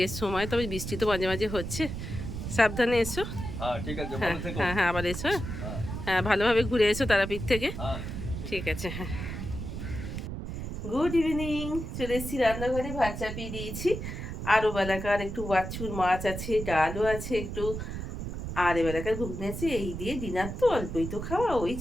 সময়, তবে বৃষ্টি তো মাঝে মাঝে হচ্ছে। সাবধানে এসো। ঠিক আছে, হ্যাঁ ভালো থেকো। হ্যাঁ হ্যাঁ, আবার এসো। হ্যাঁ, হ্যাঁ, ভালোভাবে ঘুরে এসো তারাপীঠ থেকে। হ্যাঁ। ঠিক আছে, হ্যাঁ। গুড ইভিনিং, চলে এসেছি রান্নাঘরে, ভাত চাপিয়ে দিয়েছি। আরও বেলাকার একটু বাছুর মাছ আছে, ডালও আছে একটু, আর এবেলাকার ঘুগনি আছে, এই দিয়ে ডিনার তো অল্পই তো খাওয়া, ওই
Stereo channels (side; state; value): right; noise; rumble, 6 dB below the sound